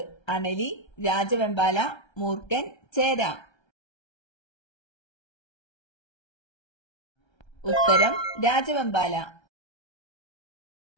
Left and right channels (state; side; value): late; right; 1.3 ms